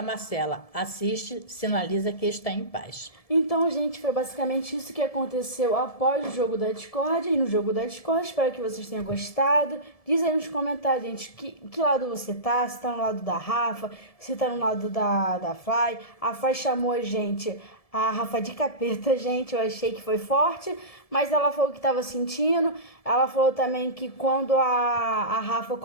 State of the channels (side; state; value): right; late; 1.7 ms